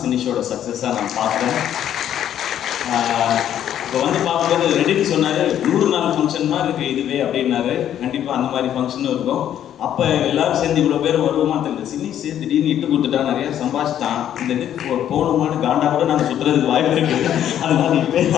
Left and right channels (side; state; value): right; quieter; 10.6 dB